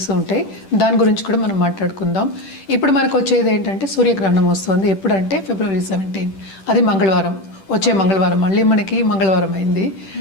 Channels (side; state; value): right; late; 10 ms